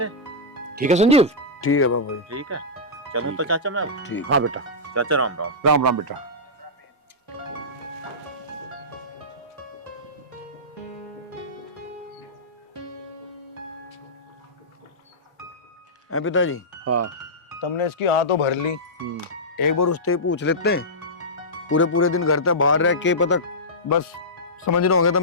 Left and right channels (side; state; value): both; normal; correlation -0.13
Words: ठीक है संजीव। ठीक है बाबू भाई। ठीक है, चलूं तो चाचा मैं अब? ठीक, हाँ बेटा। चाचा राम राम। राम राम बेटा। हैं पिताजी, हाँ। तुमने इसकी हाँ तो भर ली, एक बार उससे पूछ लेते हैं। पूरे पूरे दिन घर तक बाहर रह के पता, बस समझ रहे होंगे